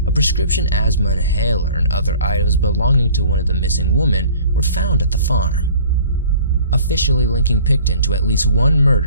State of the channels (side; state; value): both; inverted; correlation -0.49